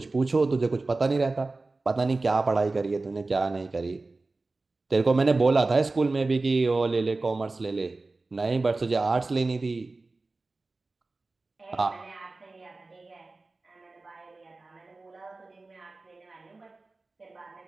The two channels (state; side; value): quieter; left; 3.4 dB